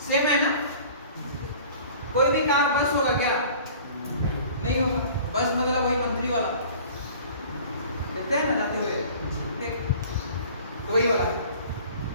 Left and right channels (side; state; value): both; inverted; correlation -0.46